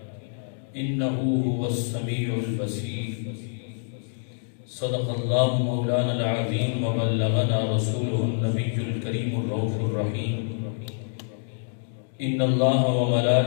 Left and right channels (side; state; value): right; silent; digital silence